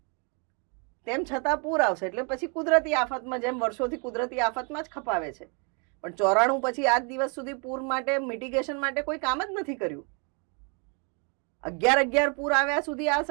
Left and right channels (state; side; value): quieter; left; 36.3 dB